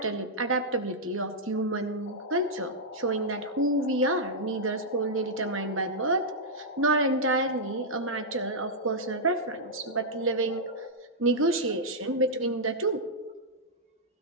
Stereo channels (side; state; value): both; normal; correlation -0.08